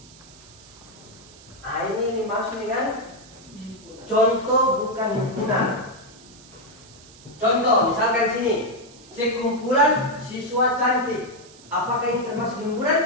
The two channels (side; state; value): right; noise; hiss, 22 dB below the sound